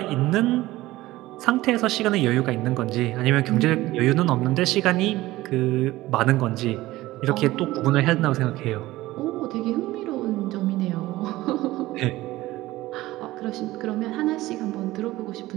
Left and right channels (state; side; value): quieter; left; 17.5 dB